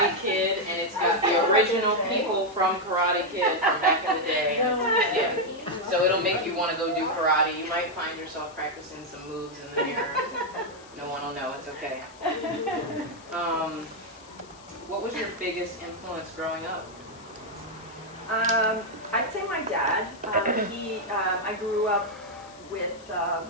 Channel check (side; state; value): left; noise; hiss, 23 dB below the sound